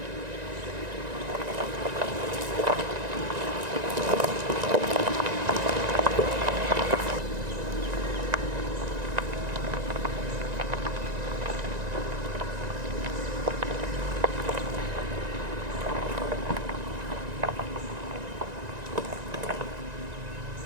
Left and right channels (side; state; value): left; late; 1.9 ms